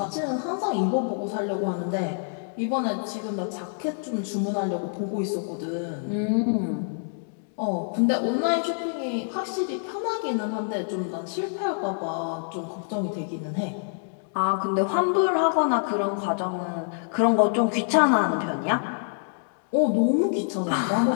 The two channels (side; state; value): right; silent; digital silence